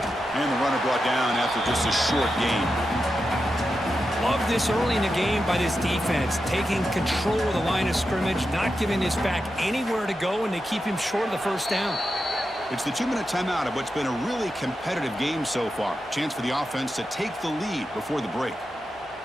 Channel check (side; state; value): both; normal; correlation 0.89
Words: And the runner brought down after just a short gain. Love this early in the game by this defense, taking control of the line of scrimmage, not giving this back anywhere to go, and they keep him short of the first down. It's the 2-minute timeout of what's been a really competitive game so far. Chance for the offense to take the lead before the break.